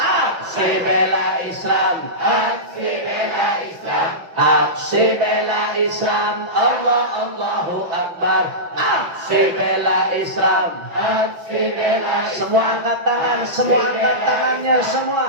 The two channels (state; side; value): late; left; 6.0 ms